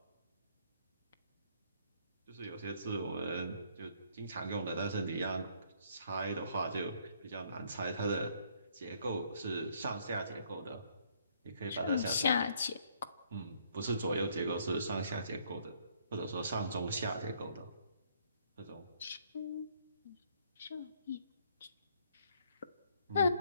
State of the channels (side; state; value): both; inverted; correlation -0.66